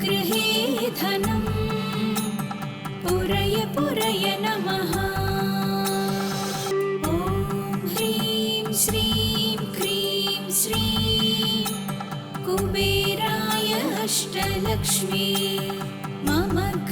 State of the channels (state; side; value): identical; both; correlation 1.00